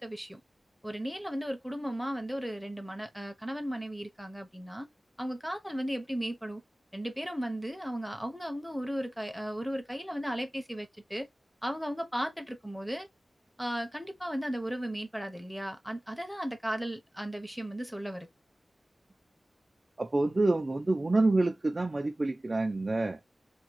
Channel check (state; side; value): normal; both; correlation 0.98